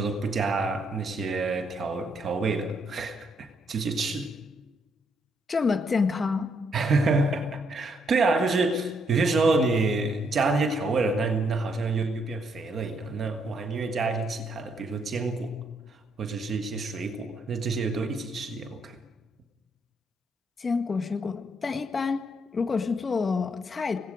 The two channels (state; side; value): normal; both; correlation 0.74